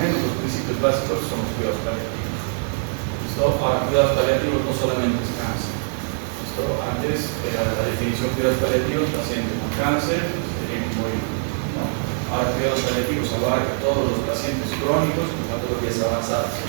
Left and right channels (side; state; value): left; silent; 63 dB below the other